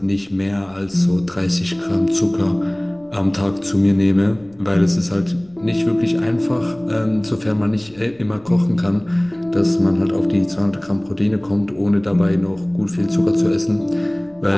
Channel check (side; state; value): left; noise; rumble, 30 dB below the sound